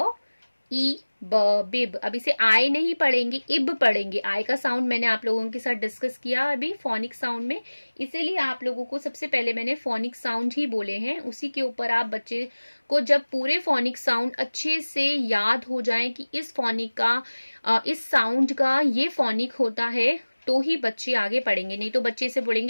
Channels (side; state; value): both; inverted; correlation -1.00